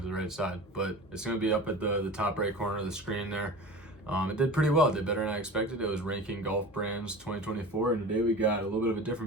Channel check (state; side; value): normal; both; correlation 0.35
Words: to the right side, but it's going to be up at the top right corner of the screen there. It did pretty well. It did better than I expected. It was ranking golf brands 2024, and today we got a little bit of a